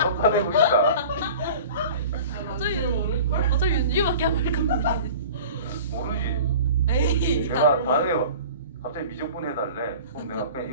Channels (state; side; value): inverted; both; correlation -0.41